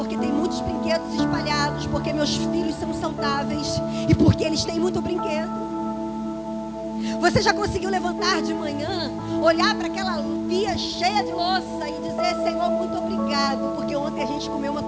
tem muitos brinquedos espalhados, porque meus filhos são saudáveis e porque eles têm muito brinquedo. Você já conseguiu levantar de manhã, olhar para aquela pia cheia de louça e dizer, Senhor, muito obrigado, porque ontem a gente comeu uma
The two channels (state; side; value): identical; both; correlation 1.00